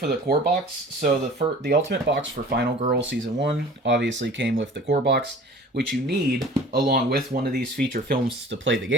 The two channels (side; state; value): both; normal; correlation 0.45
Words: the core box. So the Ultimate box for Final Girl Season 1 obviously came with the core box, which you need along with one of these feature films to play the